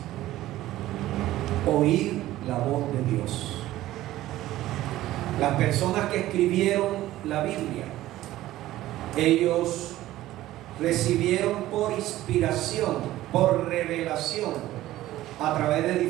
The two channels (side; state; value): left; quieter; 15.2 dB